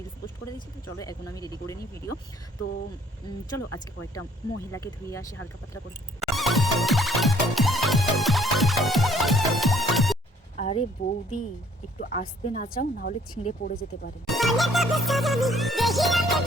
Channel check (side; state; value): both; normal; correlation 0.61